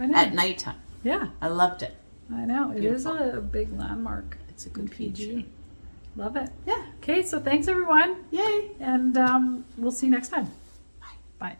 at nighttime. Yeah. I loved it. I know. It Beautiful. is a big landmark. It's a good PG. feature. Love it. Yeah. Okay, so thanks everyone. Yay. And we'll see you next time.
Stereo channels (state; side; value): inverted; both; correlation -1.00